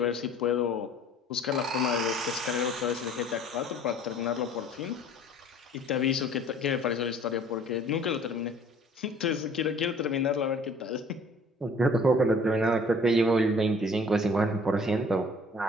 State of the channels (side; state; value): both; normal; correlation 0.52